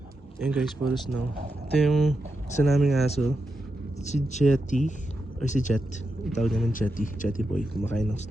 Ayan guys, puro snow. Ito yung isa naming aso, si Jetty, or si Jet. Tawag naman Jetty, Jetty boy. Kumakain ng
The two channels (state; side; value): normal; both; correlation 0.87